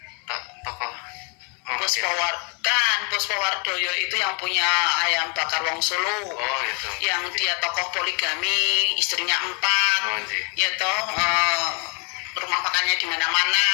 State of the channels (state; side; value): quieter; right; 34.4 dB